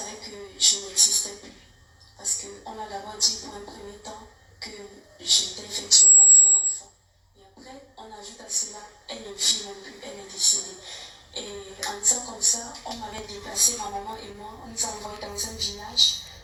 que je n'existais plus. Parce qu'on a d'abord dit pour un premier temps que j'étais effectivement son enfant. Et après, on ajoute à cela, elle ne vit même plus, elle est décédée. Et en disant comme ça, on m'avait déplacé, ma maman et moi, on nous a envoyés dans un village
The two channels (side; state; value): both; identical; correlation 1.00